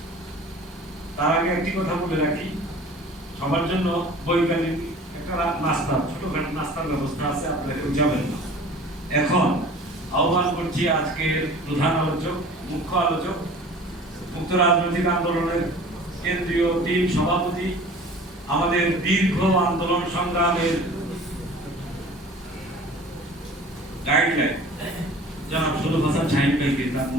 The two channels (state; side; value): normal; both; correlation 0.44